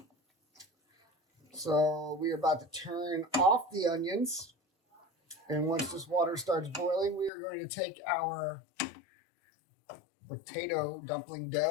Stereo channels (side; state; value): right; drops out; at 7.3 s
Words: So we are about to turn off the onions. And once this water starts boiling, we are going to take our potato dumpling